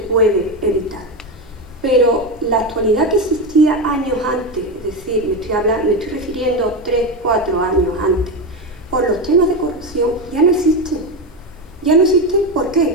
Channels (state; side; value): normal; both; correlation 0.15